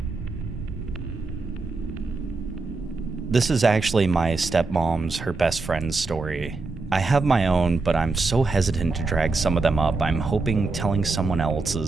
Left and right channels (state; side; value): quieter; left; 3.8 dB